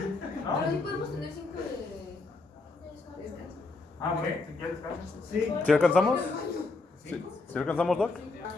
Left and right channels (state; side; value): quieter; right; 3.6 dB